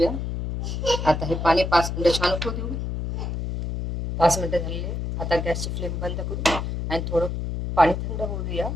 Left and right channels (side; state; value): left; noise; hum, 3 dB below the sound